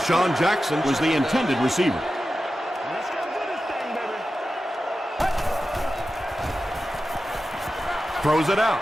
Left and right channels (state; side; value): normal; both; correlation 0.93